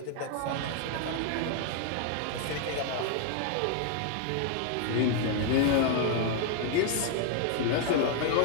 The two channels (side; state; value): both; different; correlation 0.00